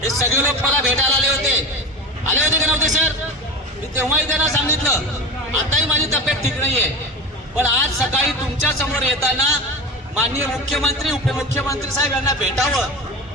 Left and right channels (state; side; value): normal; both; correlation 0.25